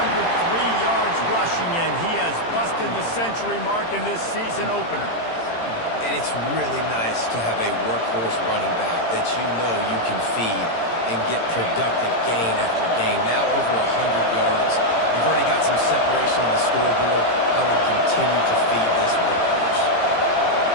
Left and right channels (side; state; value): right; late; 18 ms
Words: yards rushing, and he has busted the century mark in this season opener. And it's really nice to have a workhorse running back that you know you can feed and get productive gain after gain. Now over 100 yards. You've already got some separation on the scoreboard. I would continue to feed this workhorse.